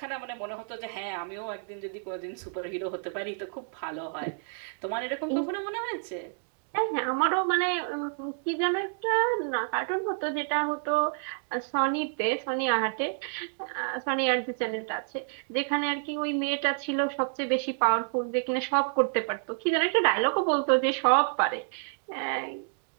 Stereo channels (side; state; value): left; silent; digital silence